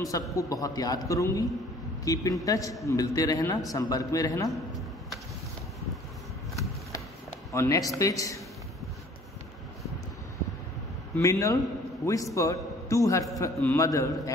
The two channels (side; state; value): both; normal; correlation 0.53